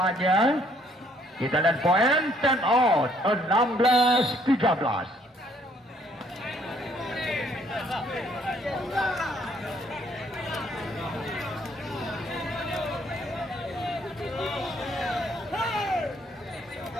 Kita lihat poin 10 out. 16-13.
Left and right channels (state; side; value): normal; both; correlation 0.65